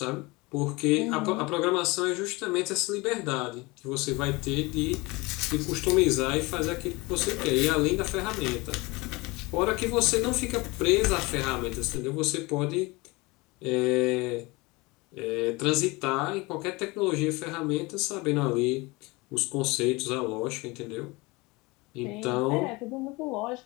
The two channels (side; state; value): right; quieter; 24.1 dB